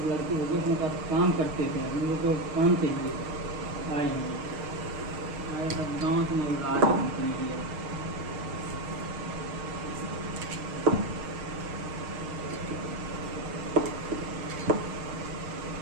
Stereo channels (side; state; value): left; late; 6.5 ms